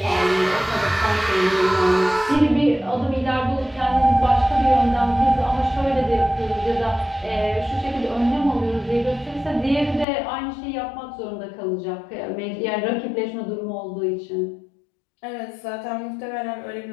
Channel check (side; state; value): right; drops out; at 10.1 s